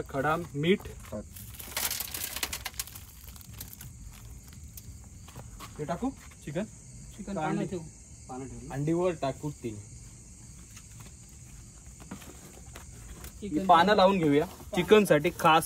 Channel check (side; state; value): both; identical; correlation 1.00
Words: खडा मीठ. हे टाकू चिकन. चिकन पाणी ठेवू. पानं ठेवू. अंडीवर टाकू ती. पानं लावून घेऊया चिकन साठी खास